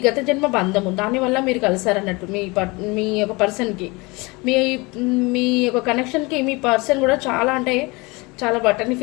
గత జన్మ బంధము, దానివల్ల మీరు కలిసారన్నట్టు మీ యొక్క పర్సన్కి. మీ యొక్క కనెక్షన్కి మీ పర్సన్ కూడా చాలా అంటే చాలా బటన్ని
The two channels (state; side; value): quieter; right; 25.4 dB